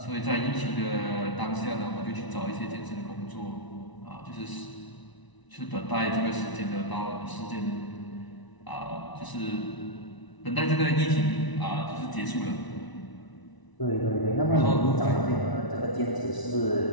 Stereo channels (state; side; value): late; right; 1.0 ms